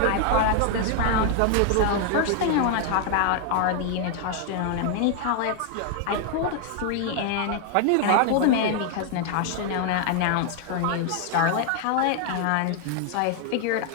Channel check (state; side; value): different; both; correlation 0.00